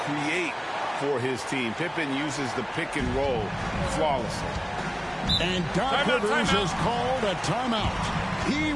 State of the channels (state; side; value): identical; both; correlation 1.00